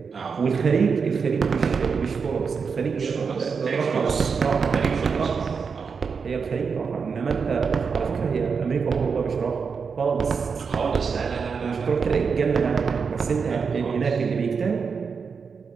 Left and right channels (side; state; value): left; quieter; 5.6 dB